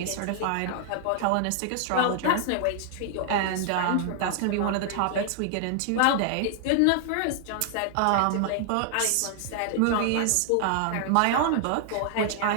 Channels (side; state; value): both; different; correlation 0.00